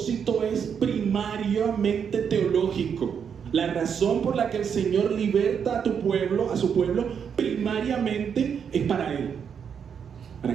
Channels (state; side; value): quieter; left; 7.3 dB